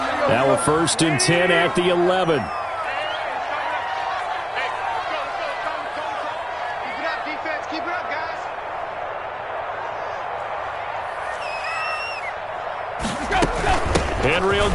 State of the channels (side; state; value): both; identical; correlation 1.00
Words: Now a 1st and 10 at the 11. Henry will